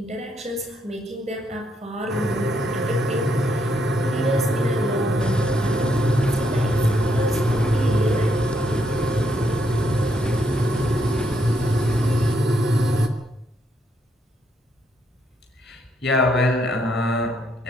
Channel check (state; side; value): normal; both; correlation 0.76